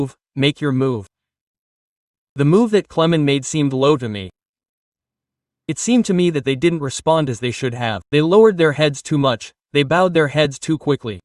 make your move. The move that Clement made seemed low to me. It seemed to me that they didn't respond as they should have. They lowered their heads too much, they bowed their heads too quickly.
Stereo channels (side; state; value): both; identical; correlation 1.00